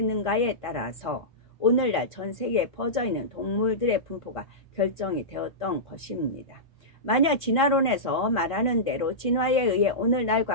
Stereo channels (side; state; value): right; late; 1.5 ms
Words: 따라서 오늘날 전 세계에 퍼져있는 동물들의 분포가 결정이 되었던 것입니다. 만약 진화론에서 말하는 대로 진화에 의해